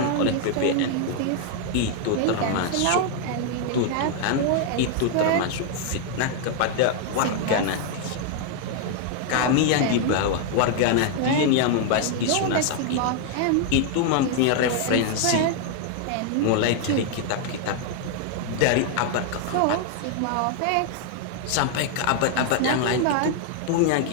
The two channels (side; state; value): both; different; correlation 0.00